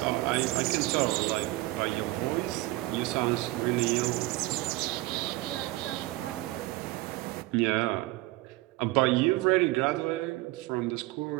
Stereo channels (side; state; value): left; quieter; 19.1 dB